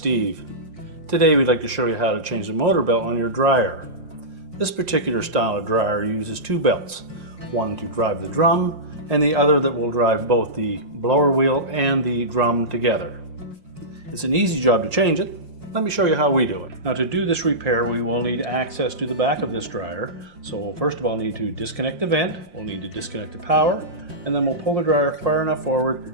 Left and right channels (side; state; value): left; late; 5.7 ms